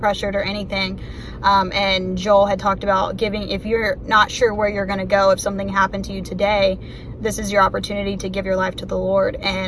or anything. And Joel had talked about if you're not sure where you're gonna go, if something happened to you today, this is your opportunity to give your life to the Lord.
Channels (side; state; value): both; identical; correlation 1.00